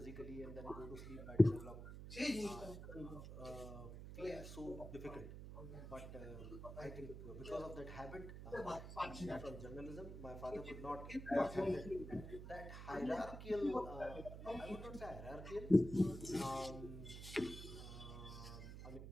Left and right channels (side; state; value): right; noise; hum, 10 dB below the sound